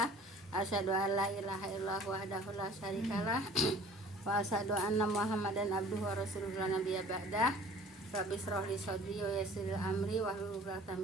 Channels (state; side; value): normal; both; correlation 0.49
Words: Asyhadu an la ilaha illallah wahdahu la syarikalah wa asyhadu anna Muhammadan abduhu wa rasuluhu la nabiyya ba'dah. Rabbi shrah li sadri wa yassir li amri wahlul 'uqdatam